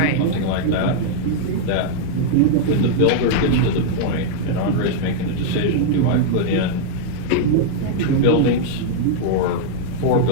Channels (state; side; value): different; both; correlation -0.01